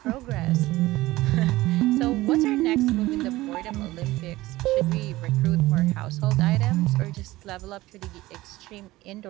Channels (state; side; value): quieter; left; 18.0 dB